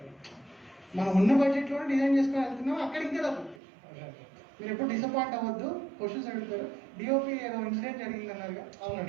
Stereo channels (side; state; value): left; drops out; at 3.6 s